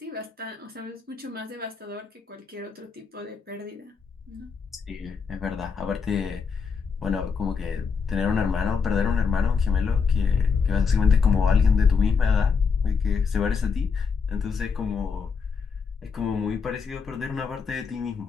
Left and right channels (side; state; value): right; quieter; 5.6 dB